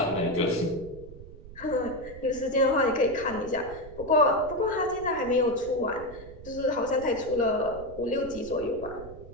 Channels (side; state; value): right; noise; rumble, 16 dB below the sound